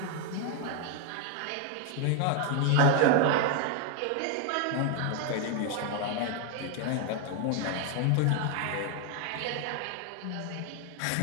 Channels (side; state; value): both; different; correlation 0.01